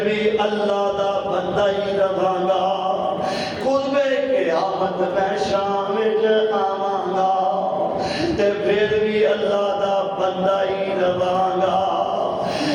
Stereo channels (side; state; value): both; identical; correlation 1.00